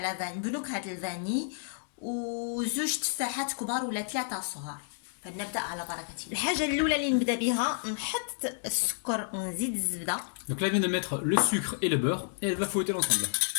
بنكهه الفاني، وزوج تفاحات كبار ولا 3 صغار. فنبدا على بركه الله. الحاجه الاولى اللي نبدا بها نحط السكر ونزيد الزبده. Donc là, elle vient de mettre le sucre et le beurre et elle va fouetter l'ensemble.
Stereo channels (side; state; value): right; silent; digital silence